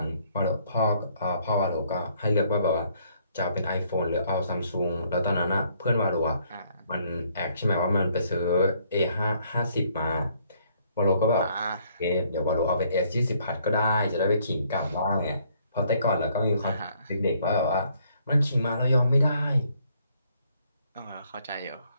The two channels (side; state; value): both; inverted; correlation -0.66